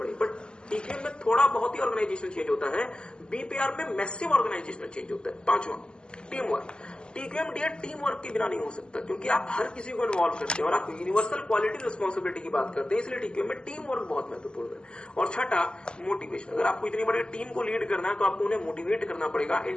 बट टीक्यूएम में थोड़ा बहुत ही ऑर्गेनाइजेशन चेंज होता है, बीपीआर में मैसिव ऑर्गेनाइजेशनल चेंज होता है। पांचवा, team work. TQM dear team work के बिना नहीं हो सकता, क्योंकि आप हर किसी को इन्वॉल्व करते हैं और आप यूनिवर्सल क्वालिटी रिस्पॉन्सिबिलिटी की बात करते हैं, इसलिए टीक्यूएम में टीम वर्क बहुत महत्वपूर्ण है। और छठा, मोटिवेशन। अगर आपको इतनी बड़ी टीम को लीड करना है तो आपको उन्हें मोटिवेट करना पड़ेगा।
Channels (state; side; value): late; right; 0.048 ms